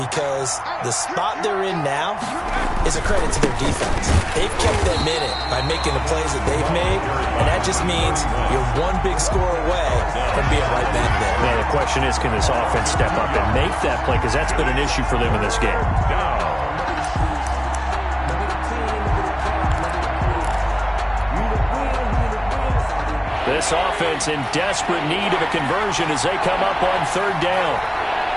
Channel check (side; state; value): both; identical; correlation 1.00